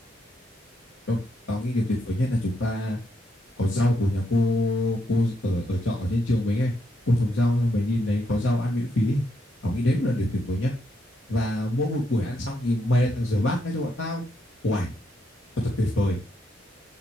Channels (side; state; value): both; normal; correlation 0.79